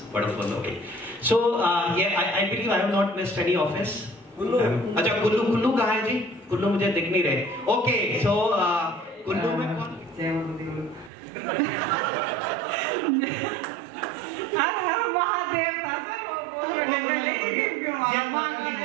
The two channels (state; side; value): drops out; left; at 11.1 s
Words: wonderful. Okay. So yeah, I believe I have not missed any office. Kullu. अच्छा कुल्लू कहाँ है जी? कुल्लू मुझे दिख नहीं रहे। Okay, so कुल्लू में कौन? हर महादेव